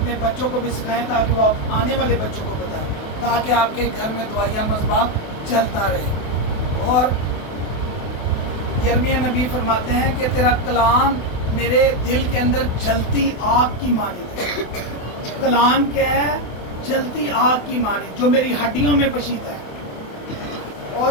बच्चों को भी सिखाएं ताकि वो आने वाले बच्चों को बताएं, ताकि आपके घर में दवाइया मसबा चलता रहे। और यिर्मयाह नबी फरमाते हैं कि तेरा कलाम मेरे दिल के अंदर जलती आग की मानिंद है। कलाम क्या है? जलती आग की मानिंद, जो मेरी हड्डियों में पशीता है।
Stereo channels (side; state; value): right; late; 28 ms